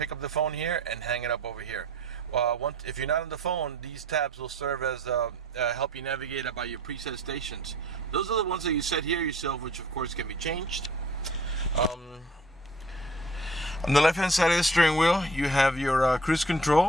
up the phone here and hang it up over here. If you're not on the phone, these tabs will serve as help you navigate about your preset stations. Those are the ones that you set here yourself, which of course can be changed. On the left hand side of the steering wheel, you have your cruise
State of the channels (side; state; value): both; normal; correlation 0.51